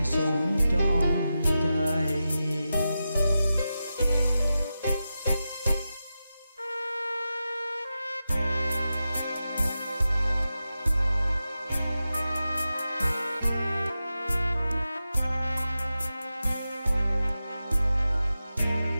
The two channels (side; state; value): both; inverted; correlation -0.91